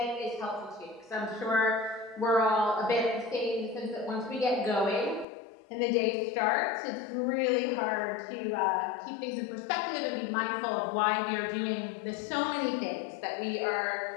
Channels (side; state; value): right; drops out; at 5.2 s